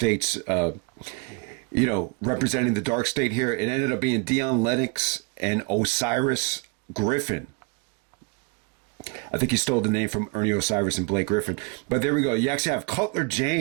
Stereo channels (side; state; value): left; quieter; 31.8 dB